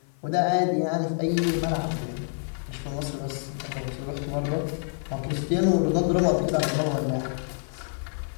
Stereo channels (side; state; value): right; silent; 60 dB below the other